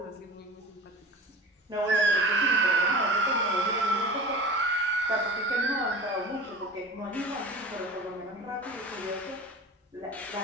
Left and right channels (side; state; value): both; normal; correlation 0.35